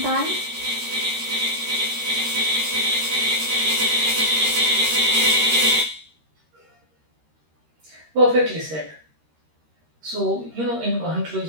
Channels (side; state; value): left; late; 13 ms